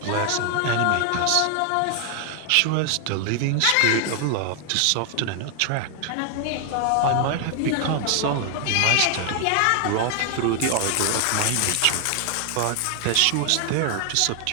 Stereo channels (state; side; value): different; both; correlation 0.00